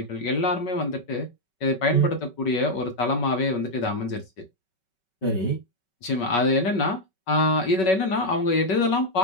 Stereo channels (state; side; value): late; right; 5.3 ms